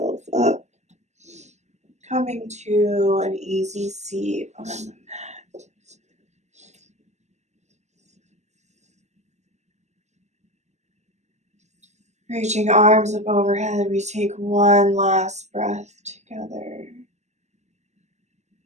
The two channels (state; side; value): late; left; 0.33 ms